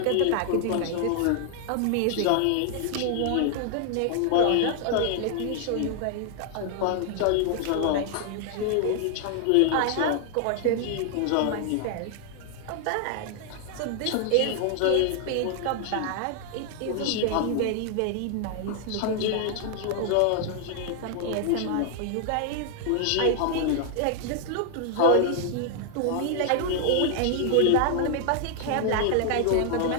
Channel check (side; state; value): both; different; correlation 0.00